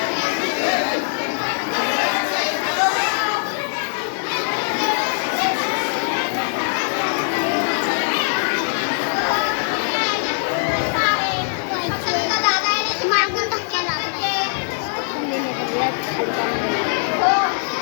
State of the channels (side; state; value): right; silent; digital silence